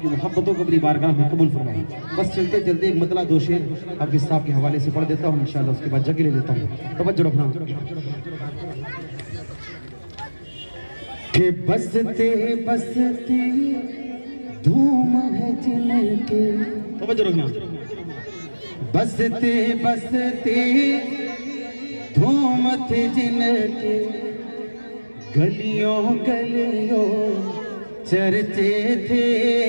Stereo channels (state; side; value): inverted; both; correlation -1.00